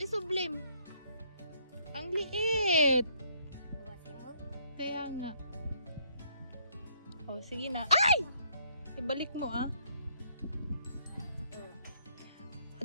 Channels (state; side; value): inverted; both; correlation -0.67